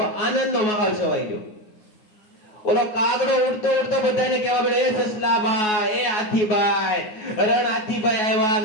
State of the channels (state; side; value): late; right; 9.4 ms